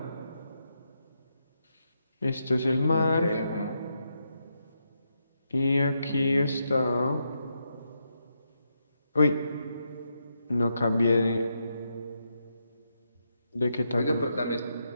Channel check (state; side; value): inverted; both; correlation -0.82